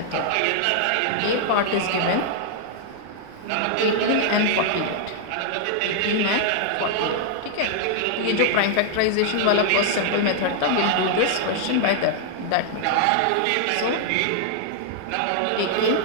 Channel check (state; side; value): different; both; correlation -0.01